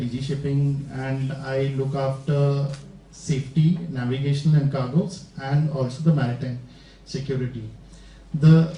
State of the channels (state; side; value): identical; both; correlation 1.00